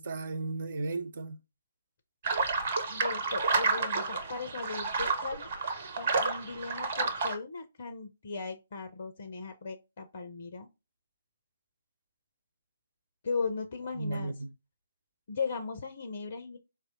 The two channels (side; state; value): both; inverted; correlation -0.68